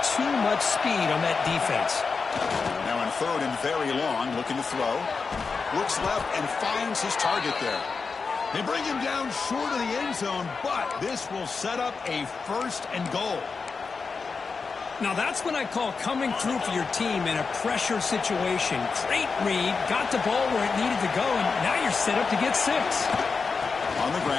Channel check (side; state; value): right; quieter; 4.8 dB